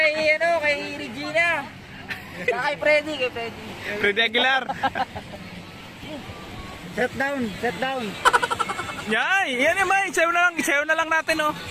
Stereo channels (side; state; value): both; identical; correlation 1.00